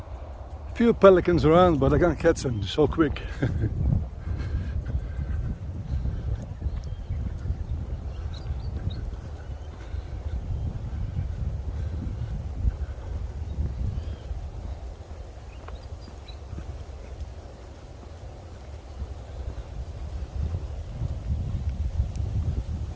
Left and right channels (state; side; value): identical; both; correlation 1.00